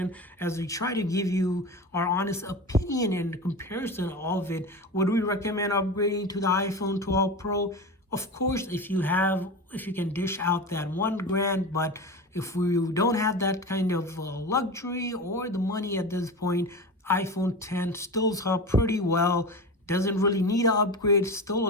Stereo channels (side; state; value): both; normal; correlation 0.27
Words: as we try to give you our honest opinion and comparison of it. Would we recommend upgrading to the iPhone 12 Pro? Of course, if you can dish out that $1,000, but if we don't have that kind of luxury or the money at this point, iPhone 10 stills up pretty well. Doesn't really need an upgrade. Still a